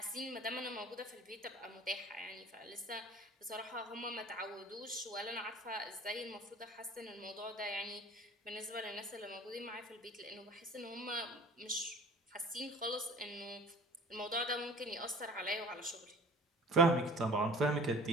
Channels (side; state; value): both; normal; correlation 0.45